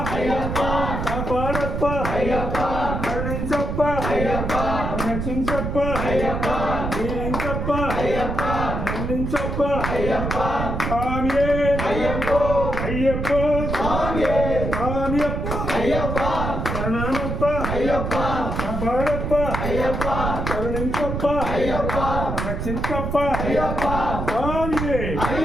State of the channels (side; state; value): right; noise; rumble, 3 dB below the sound